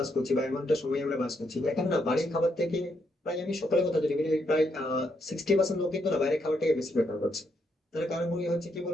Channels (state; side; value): normal; both; correlation 0.78